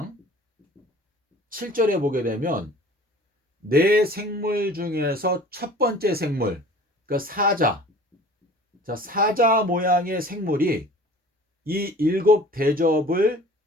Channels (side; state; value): both; normal; correlation 0.46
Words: 7절에 보게 되면 네 생물 중에서 첫 번째 생물, 그러니까 사자. 자, 사자 모양의 생물이 이 일곱 대접을